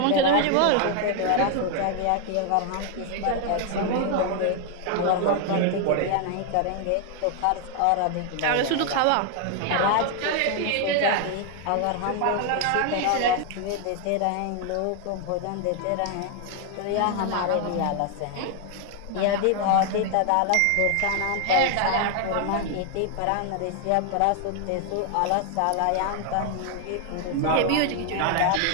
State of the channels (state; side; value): different; both; correlation 0.00